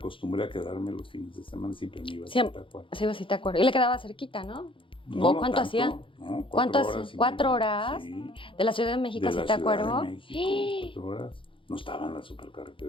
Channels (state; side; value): late; right; 0.25 ms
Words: a quedarme los fines de semana, siempre me iba a Zitácuaro. Sí, sí, te acuerdo. Y le quedaba cerquita, ¿no? No, ¿Cuánto tanto, hacía? No, ¿Cuánto 4 hacía? horas. ¿4 horas? Sí, ¿De la Ciudad de México a de la Zitácuaro? Ciudad de México, 4 horas. No estaban las